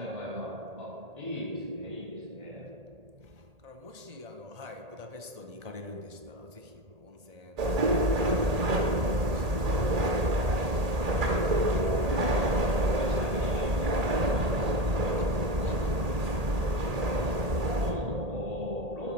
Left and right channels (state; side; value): late; left; 1.8 ms